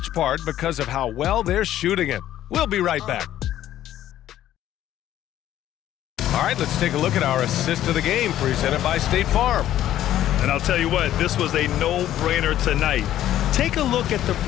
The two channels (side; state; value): right; quieter; 12.5 dB